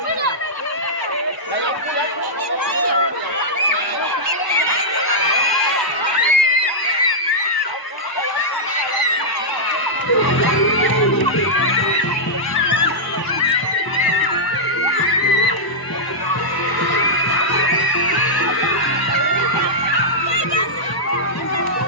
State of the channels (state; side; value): late; right; 1.0 ms